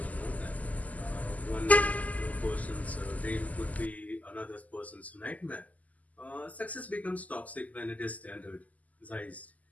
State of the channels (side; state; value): right; late; 0.075 ms